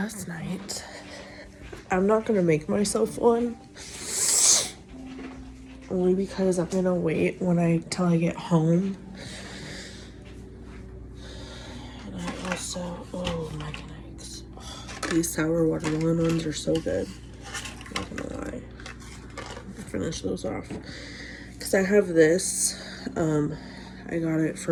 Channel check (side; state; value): both; identical; correlation 1.00